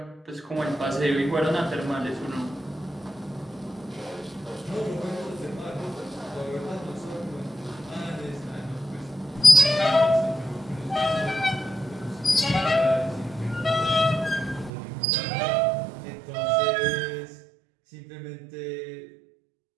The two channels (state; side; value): drops out; left; at 14.7 s